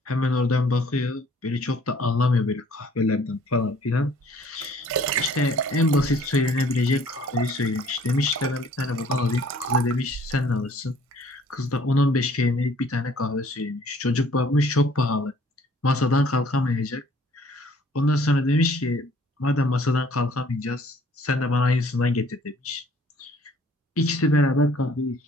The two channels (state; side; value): normal; both; correlation 0.57